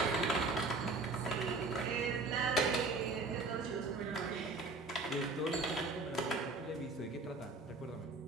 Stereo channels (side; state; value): left; quieter; 3.6 dB